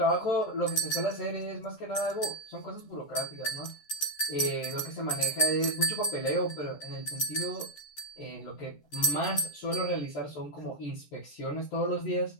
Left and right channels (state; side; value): late; right; 14 ms